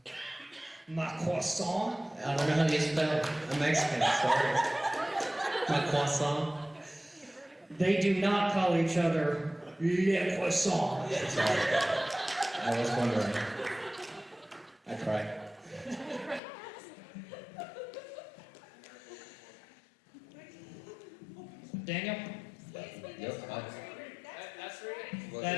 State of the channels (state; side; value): drops out; right; at 16.4 s